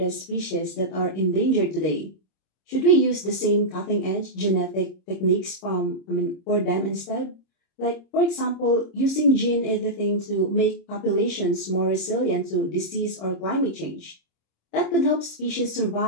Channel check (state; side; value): late; right; 26 ms